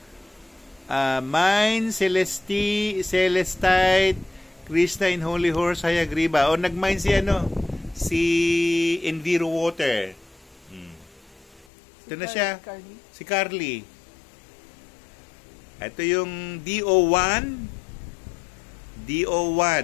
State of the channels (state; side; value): drops out; right; at 11.7 s